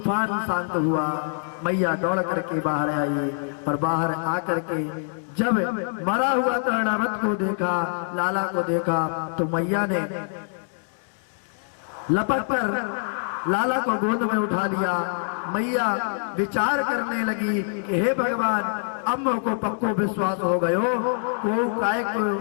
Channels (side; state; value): right; silent; digital silence